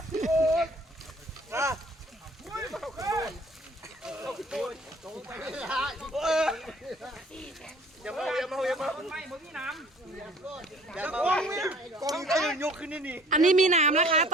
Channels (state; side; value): normal; both; correlation 0.53